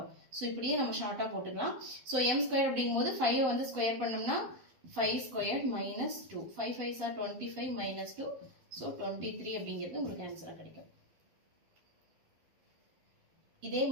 ஸோ இப்படியே நம்ம ஷார்ட்டாக போட்டுக்கலாம். ஸோ m ஸ்கொயர் அப்படிங்கும்போது 5 வந்து ஸ்கொயர் பண்ணோம்னா 5 ஸ்கொயர் -2 5 5s are 25 -2. ஸோ 23 அப்படிங்கிறது உங்களுக்கு ஆன்சராக கிடைக்கும். இதே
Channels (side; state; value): left; late; 12 ms